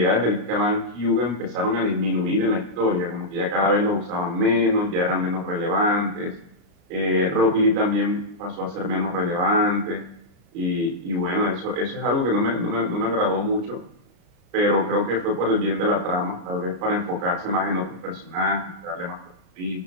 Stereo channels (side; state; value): left; late; 36 ms